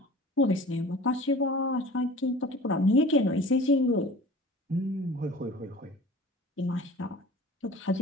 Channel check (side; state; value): both; normal; correlation 0.41